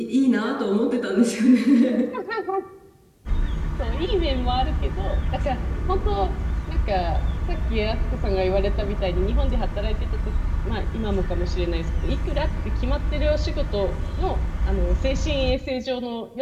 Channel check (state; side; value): identical; both; correlation 1.00